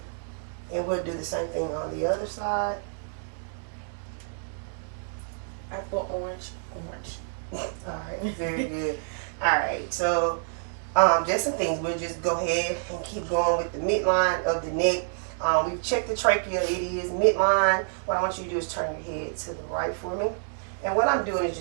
And we'll do the same thing on the other side. Apple, orange. All right, very good. All right, so just some things. We'll just go ahead and keep going with the midline of the neck. We've checked the trachea. It is midline. What I want you to do is turn your head to the right for me. And what I'm doing is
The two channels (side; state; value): left; silent; digital silence